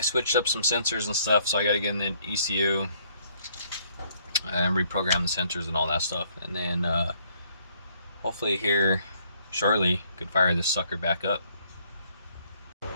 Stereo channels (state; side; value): inverted; both; correlation -0.66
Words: switched up some sensors and stuff, so I got to get in the ECU and reprogram the sensors and all that stuff. And then hopefully here shortly could fire this sucker back up.